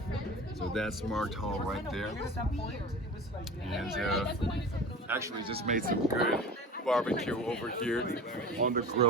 So that's Marked Hall right there. And actually just made some good barbecue over here on the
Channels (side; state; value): both; normal; correlation 0.36